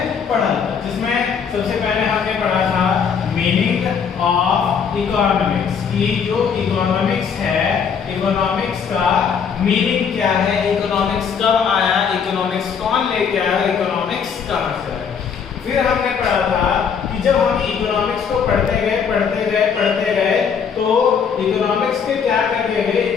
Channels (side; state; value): right; quieter; 6.7 dB